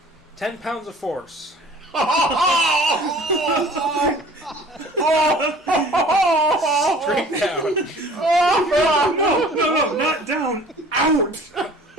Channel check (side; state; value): both; normal; correlation 0.48